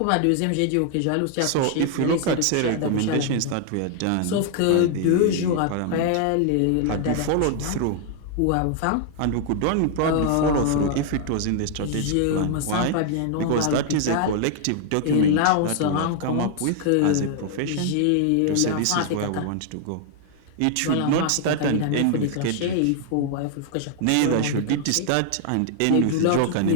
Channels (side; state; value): both; different; correlation 0.00